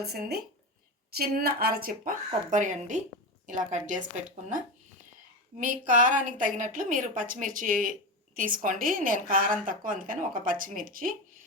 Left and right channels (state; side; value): normal; both; correlation 0.19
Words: చిన్న అరచిప్ప కొబ్బరి అండి, ఇలా కట్ చేసి పెట్టుకున్న. మీ కారానికి తగినట్లు మీరు పచ్చిమిర్చి తీసుకోండి. నేను కారం తక్కువ అందుకని ఒక పచ్చిమిర్చి.